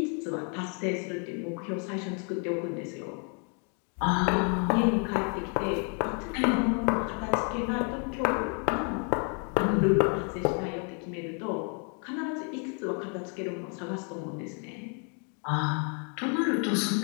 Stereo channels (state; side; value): quieter; right; 38.9 dB